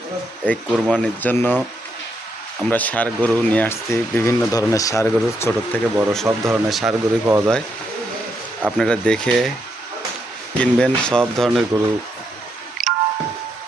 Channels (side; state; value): both; normal; correlation 0.79